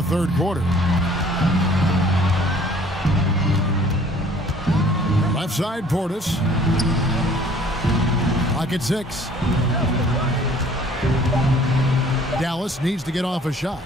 third quarter. Left side, Portis. Clock at 6. Dallas needs to get off a shot.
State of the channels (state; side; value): normal; both; correlation 0.55